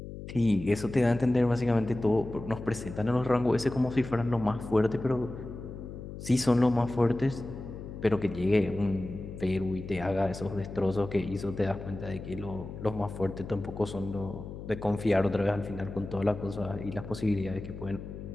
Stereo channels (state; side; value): noise; left; hum, 10 dB below the sound